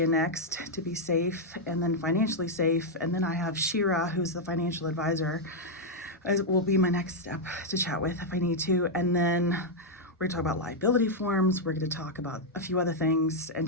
next to be safe and then financially safe. And then I have Shira, who's the financial advisor, will be my next step to chat with if I need to. And then we're gonna talk about liability forms. We're gonna talk about a few other things and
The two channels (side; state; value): both; normal; correlation -0.02